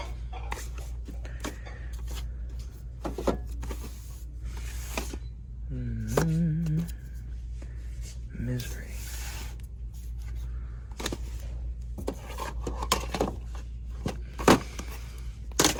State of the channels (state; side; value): identical; both; correlation 1.00